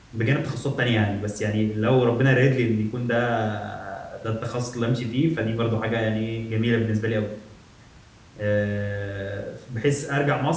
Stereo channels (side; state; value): both; identical; correlation 1.00